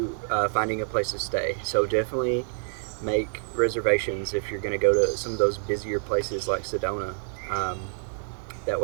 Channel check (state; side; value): silent; left; digital silence